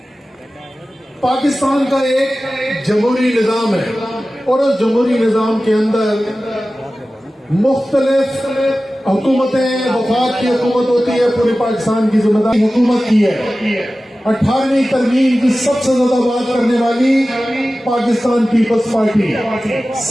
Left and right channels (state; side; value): normal; both; correlation 0.96